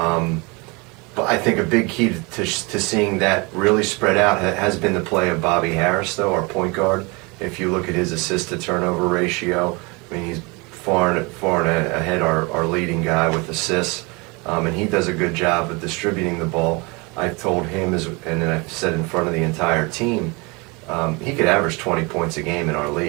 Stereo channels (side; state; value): left; quieter; 27.9 dB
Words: I think a big key to seeing that really spread out has been the play of Bobby Harris, though, our point guard. If you look at his assist-to-turnover ratio, he's far and ahead our leading guy with assists, and he does a good job of distributing the ball. I've told him, and then I've said in front of the entire team, he could average 20 points a game in our